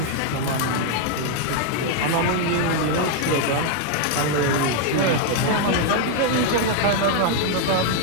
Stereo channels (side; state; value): both; different; correlation 0.01